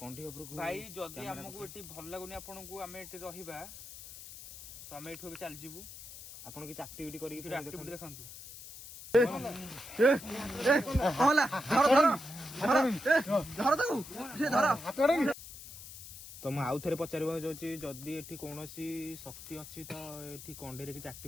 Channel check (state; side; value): noise; left; hiss, 14 dB below the sound